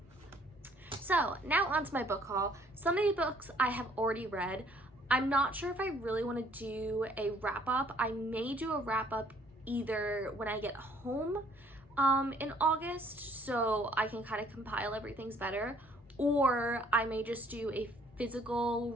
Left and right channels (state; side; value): normal; both; correlation 0.62